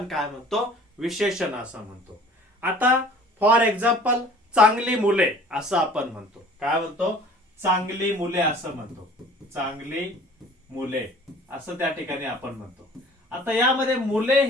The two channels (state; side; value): normal; both; correlation 0.49